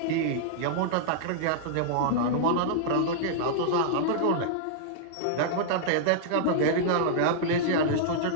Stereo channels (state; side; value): different; both; correlation -0.02